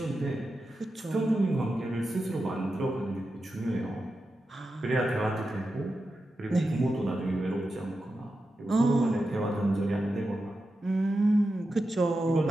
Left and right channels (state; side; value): normal; both; correlation 0.90